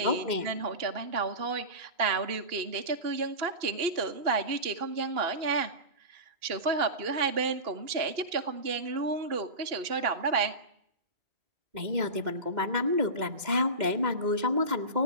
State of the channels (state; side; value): late; left; 2.1 ms